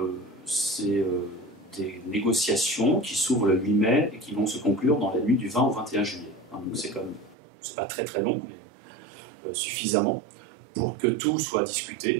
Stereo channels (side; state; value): left; drops out; at 7.4 s